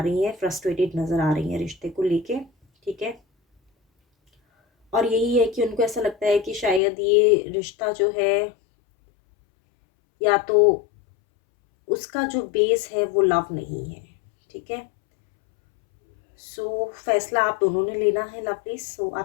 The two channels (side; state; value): right; drops out; at 6.8 s